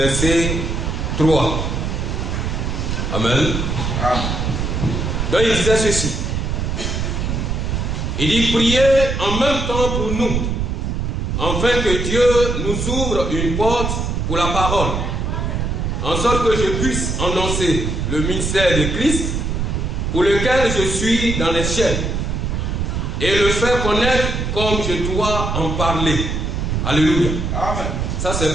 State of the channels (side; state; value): right; noise; rumble, 1 dB below the sound